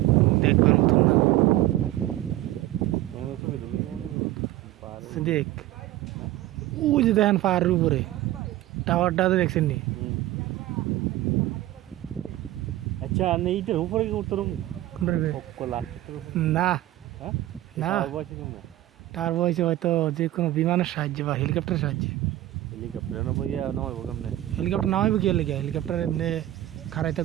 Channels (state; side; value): quieter; left; 15.1 dB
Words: দেখবার মতন না আমি তো বিদু দেখ ওই যে দেখেন পাহাড়ের উপরে টাওয়ারটা তো দেখছেন নি আচ্ছা আমি এইটার উপরে কি উত্তরম কোলা না হ্যাঁ না বসে কেমন টাওয়ার বইছে হয়তো যে কোনো বিমানের সাহায্যে বা হেলিকপ্টারের সাহায্যে হেলিকপ্টার না বইয়া নয় কেমনে হেলিকপ্টার নামাইব গিয়ে লেগে হেলিকপ্টার এমনি খাড়াই